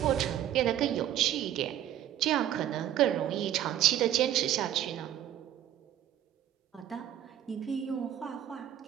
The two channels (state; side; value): quieter; left; 11.5 dB